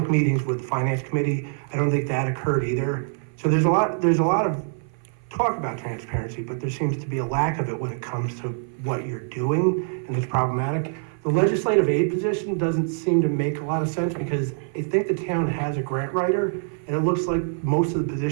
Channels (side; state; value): left; silent; 56 dB below the other